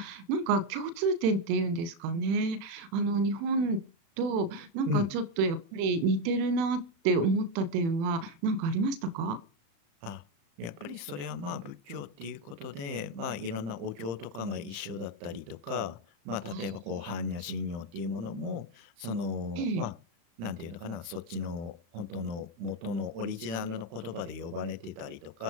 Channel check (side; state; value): left; late; 35 ms